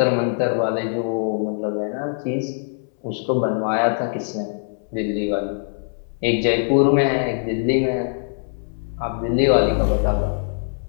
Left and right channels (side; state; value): right; silent; 64 dB below the other